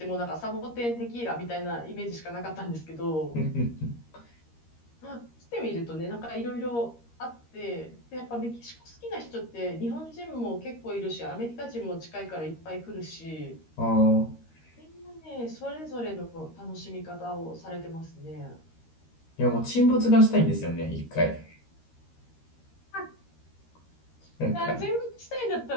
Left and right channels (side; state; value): right; late; 13 ms